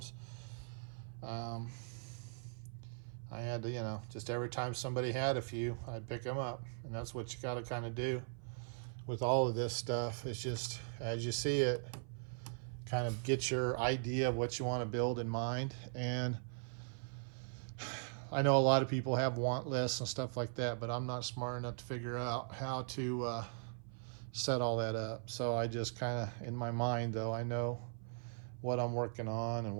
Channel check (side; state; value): left; silent; 51 dB below the other